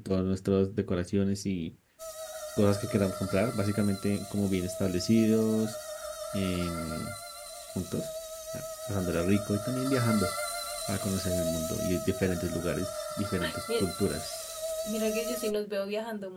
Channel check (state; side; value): identical; both; correlation 1.00